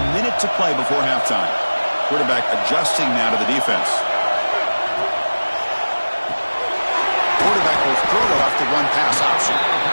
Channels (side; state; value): both; inverted; correlation -1.00